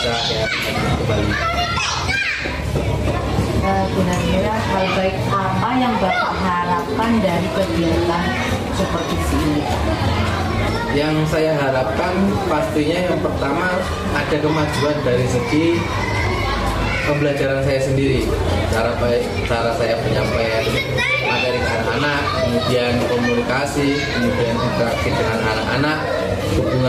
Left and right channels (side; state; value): both; identical; correlation 1.00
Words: saya kembali. Kira-kira hal baik apa yang Bapak harapkan dari kegiatan supervisi ini? Yang saya harapkan pastinya yang pertama ada kemajuan dari segi pembelajaran saya sendiri, cara saya penyampaian materi ke anak-anak, kemudian komunikasi, kemudian interaksi dengan anak-anak,